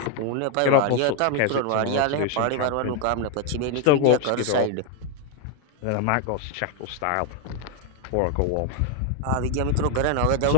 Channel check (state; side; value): different; both; correlation 0.01